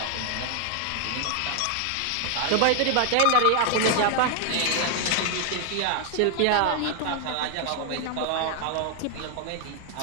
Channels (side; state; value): both; different; correlation 0.00